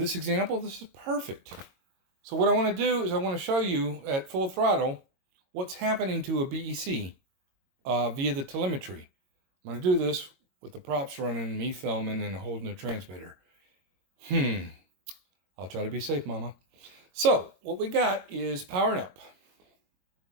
example, this is perfect. So what I want to do is I want to show you at full throttle what's happening to a BEC via the telemetry. I'm going to do this with the props running, me filming, and holding the transmitter. I'll try to be safe, Mama. So, what we got is powering up.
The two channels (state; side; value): late; left; 22 ms